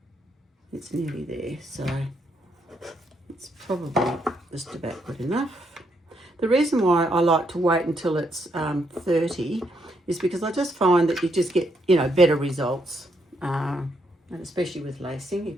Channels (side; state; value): both; normal; correlation 0.76